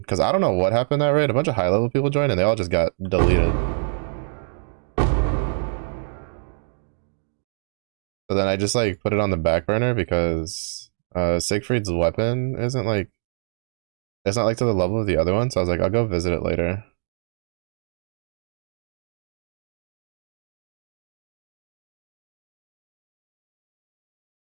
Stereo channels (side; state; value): left; silent; digital silence